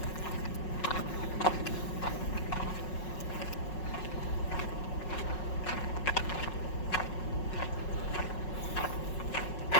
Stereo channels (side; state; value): right; late; 5.5 ms